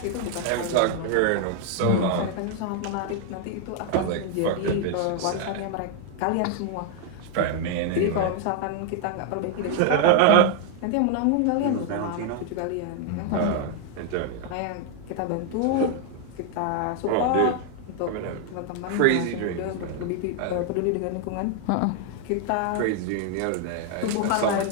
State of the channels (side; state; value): both; different; correlation 0.00